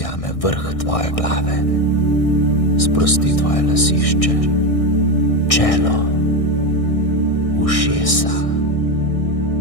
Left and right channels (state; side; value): late; right; 1.6 ms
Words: vrh tvoje glave, sprosti tvoje lasišče, čelo, ušesa,